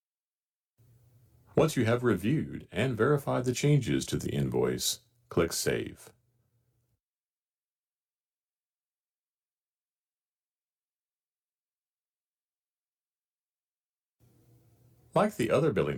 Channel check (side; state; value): both; identical; correlation 1.00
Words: Once you have reviewed and verified the changes to the invoice, click Save. Like the other